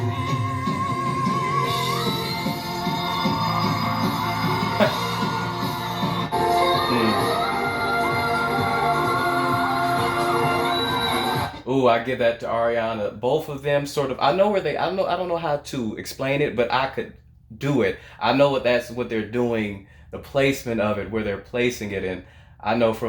Mm. Ooh, I give that to Ariana. Both of them sort of. I know where they. I know. I don't know how to explain it, but I could do it. I know that's what they're doing. The placement of it, where they're placing it in. I know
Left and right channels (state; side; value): identical; both; correlation 1.00